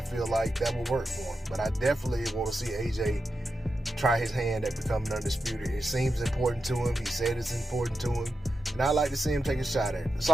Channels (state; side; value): normal; both; correlation 0.89